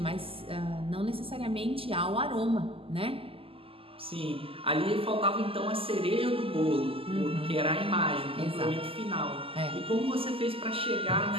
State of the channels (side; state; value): left; late; 0.27 ms